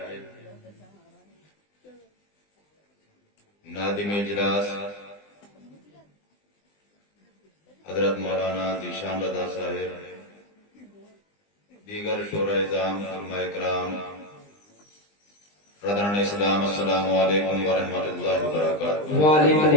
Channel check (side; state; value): right; late; 20 ms